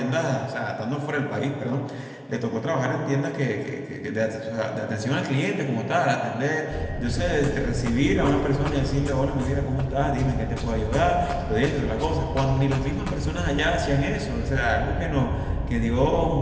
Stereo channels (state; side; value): identical; both; correlation 1.00